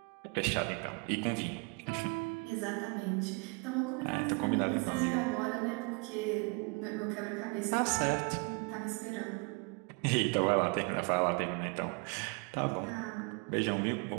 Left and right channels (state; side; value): quieter; left; 31.5 dB